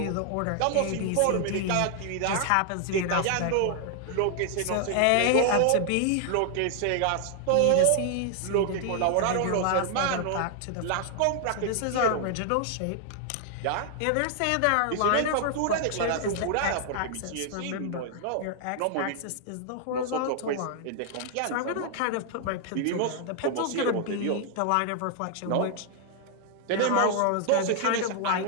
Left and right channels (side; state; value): both; different; correlation 0.00